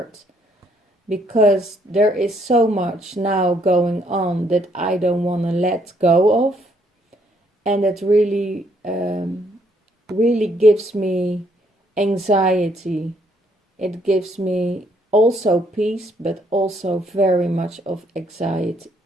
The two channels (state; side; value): normal; both; correlation 0.69